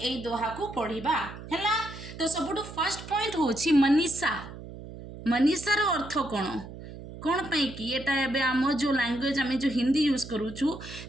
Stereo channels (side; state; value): right; noise; hum, 13 dB below the sound